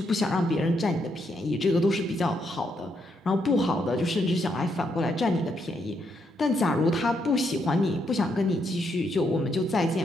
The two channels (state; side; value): normal; both; correlation 0.77